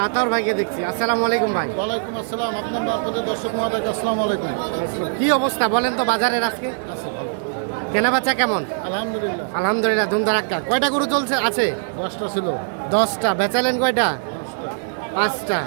আতাউর ভাইকে দেখছি। আসসালামু আলাইকুম ভাই। ওয়ালাইকুম আসসালাম। আপনার মারফতে দর্শক মহোদয়কে আসসালামু আলাইকুম। কি অবস্থা বলেন তো বাজারের আজকে? কেনা বেচা কেমন? আলহামদুলিল্লাহ। আলহামদুলিল্লাহ, ধুমধারাক্কা। কয়টা গরু চলছে আছে? 10টা ছিল। 10টা। বেচালেন কয়টা? 5টা।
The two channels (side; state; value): left; silent; digital silence